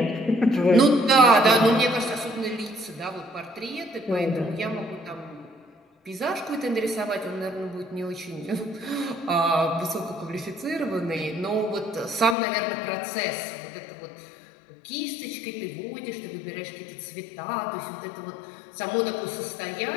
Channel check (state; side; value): drops out; right; at 12.4 s